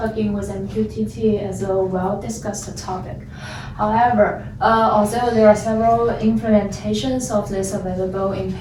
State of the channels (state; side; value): identical; both; correlation 1.00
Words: with MQTT is a well-discussed topic. However, although there are several implementations of this available in